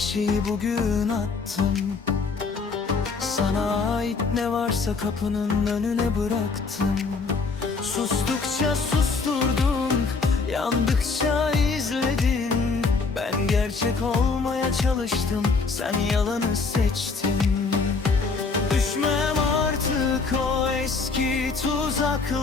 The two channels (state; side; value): quieter; right; 4.4 dB